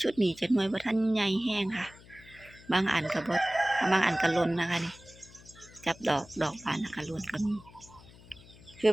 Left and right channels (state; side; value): noise; left; hum, 22 dB below the sound